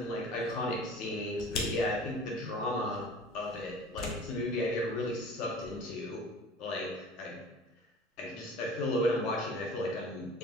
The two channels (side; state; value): both; normal; correlation 0.43